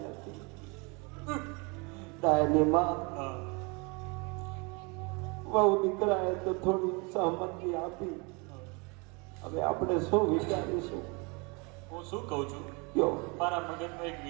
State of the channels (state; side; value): quieter; left; 30.1 dB